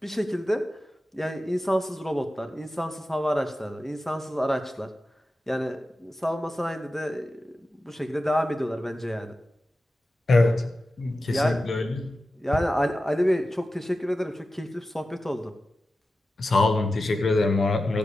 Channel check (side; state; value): both; normal; correlation 0.93